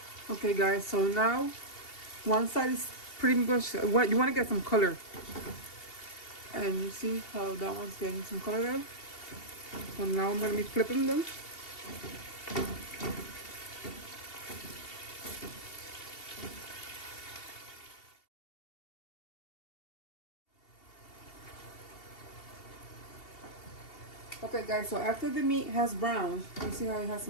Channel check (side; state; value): right; late; 2.7 ms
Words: Okay guys, so now one side is pretty much what you want to get some color. And you see how that one's getting some color there? So now I'm going to be flipping them. Okay guys, so after the meat has browned, you see how it has